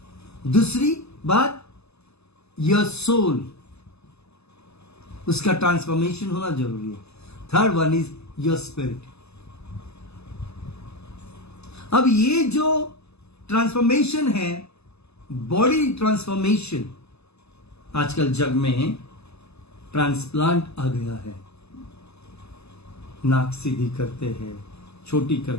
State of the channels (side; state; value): right; late; 0.79 ms